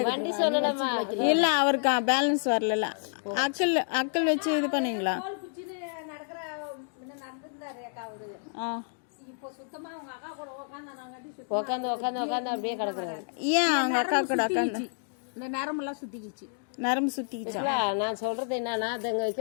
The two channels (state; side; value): silent; right; digital silence